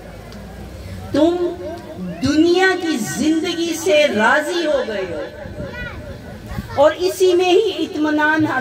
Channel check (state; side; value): identical; both; correlation 1.00